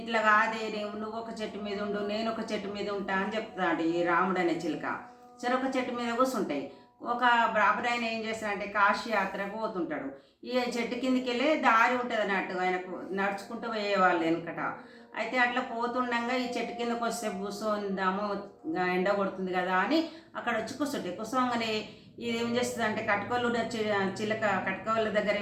కాదే, నువ్వు ఒక చెట్టు మీద ఉండు, నేను ఒక చెట్టు మీద ఉంటా అని చెప్తాడు ఈ రాముడు అనే చిలుక. చెరొక చెట్టు మీద కూర్చుంటాయి. ఒక బ్రాహ్మణ ఏం చేస్తాడంటే కాశీ యాత్రకు పోతుంటాడు. ఈ చెట్టు కిందికి వెళ్ళే దారి ఉంటుంది అన్నట్టు, ఆయనకు నడుచుకుంటూ పోయేవాళ్ళు వెనకట. అయితే అట్లా పోతుండగా ఈ చెట్టు కిందకు వస్తే కూర్చొందాము, ఎండ కొడుతుంది కదా అని అక్కడ వచ్చి కూర్చుంటాయి. కూర్చోగానే ఇది ఏం చేస్తుంది అంటే కట్టుకోళ్ళు చిలక, కట్టుకోళ్ళ దగ్గర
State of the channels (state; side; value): identical; both; correlation 1.00